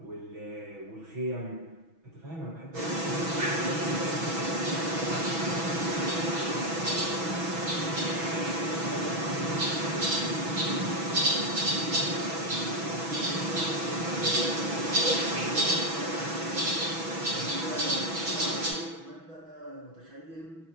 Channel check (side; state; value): left; late; 6.1 ms